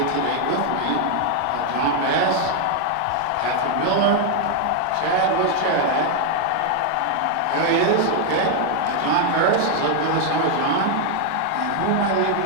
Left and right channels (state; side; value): different; both; correlation 0.00